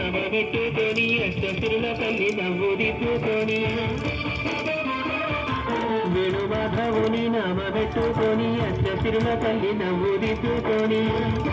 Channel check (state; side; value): identical; both; correlation 1.00